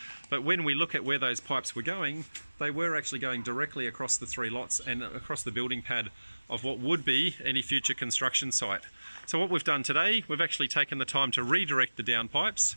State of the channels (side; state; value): both; inverted; correlation -1.00